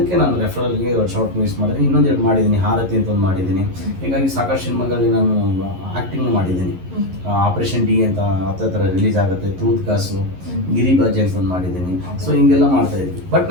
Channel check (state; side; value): late; left; 11 ms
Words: ನಾನು ರೆಫರಲ್ಗೆ ಶಾರ್ಟ್ ಮೂವೀಸ್ ಮಾಡಿದ್ದೀನಿ. ಇನ್ನೊಂದೆರಡು ಮಾಡಿದ್ದೀನಿ, ಹಾರತಿ ಅಂತ ಒಂದು ಮಾಡಿದ್ದೀನಿ. ಹೀಗಾಗಿ ಸಾಕಷ್ಟು ಸಿನಿಮಾಗಳಲ್ಲಿ ನಾನು ಆ್ಯಕ್ಟಿಂಗ್ ಮಾಡಿದ್ದೀನಿ. ಆಪರೇಷನ್ ಡಿ ಅಂತ ಹತ್ರ ರಿಲೀಸ್ ಆಗುತ್ತೆ, ತೂತ್ ಕಾಸು, ಗಿರಿಬಾಜಿ ಅಂತ ಒಂದು ಮಾಡಿದ್ದೀನಿ. ಸೊ ಹಿಂಗೆಲ್ಲ ಮಾಡ್ತಾ ಇದ್ವಿ. ಬಟ್